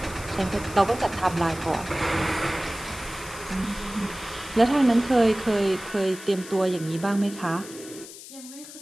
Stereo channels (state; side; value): noise; left; hiss, 15 dB below the sound